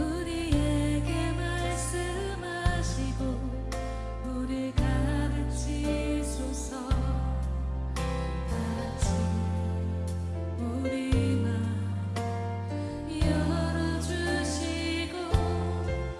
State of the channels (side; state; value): both; identical; correlation 1.00